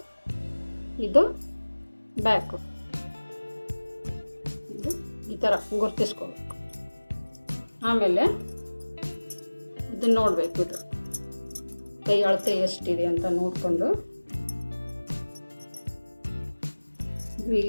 ಇದು ಬ್ಯಾಕು, ಇದು ಈ ಥರ ಗುರ್ತಿಸ್ಕೋಬೇಕು. ಆಮೇಲೆ ಇದನ್ನು ನೋಡಬೇಕು, ಇದು ಕೈ ಅಳತೆ ಎಷ್ಟಿದೆ ಅಂತ ನೋಡಿಕೊಂಡು ಇದು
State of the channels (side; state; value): both; inverted; correlation -1.00